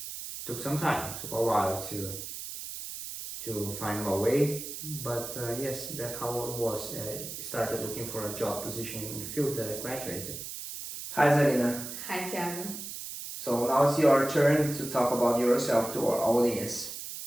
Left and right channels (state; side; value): noise; right; hiss, 8 dB below the sound